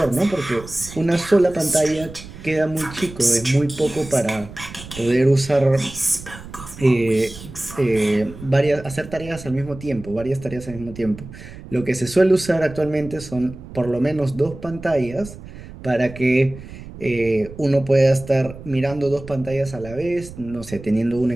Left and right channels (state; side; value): noise; right; rumble, 15 dB below the sound